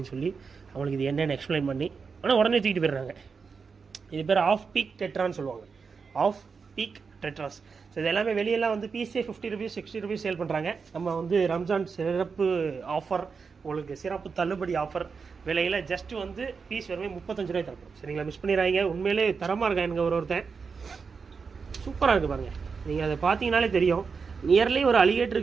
சொல்லி அவங்களுக்கு இது என்னென்னு எக்ஸ்பிளைன் பண்ணி ஆனால் உடனே தூக்கிட்டு போயிடுறாங்க. இது பேர் ஆஃப் பீக் டெட்ரான்னு சொல்லுவாங்க. Of peak Tedros. ஸோ இது எல்லாமே வெளியெல்லாம் வந்து பீஸே 50 ருபீஸ் 60 ருபீஸ் சேல் பண்ணுறாங்க. நம்ம வந்து ரம்ஜான் சிறப்பு ஆஃபர், உங்களுக்கு சிறப்பு தள்ளுபடி ஆஃபர் விலையில் ஜஸ்ட்டு வந்து பீஸ் வெறுமே 35 ரூபாய் தரப்போம். சரிங்களா? மிஸ் பண்ணிடுறாங்க. உண்மையிலே தரமாக இருக்கா எனக்கு ஒருத்தன் சூப்பராக இருக்குது பாருங்கள். நீங்கள் அதை பார்த்தீங்கனாலே தெரியும். நியர்லி ஒரு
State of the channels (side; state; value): left; quieter; 5.3 dB